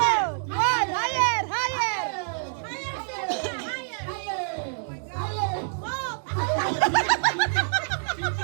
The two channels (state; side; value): silent; left; 61 dB below the other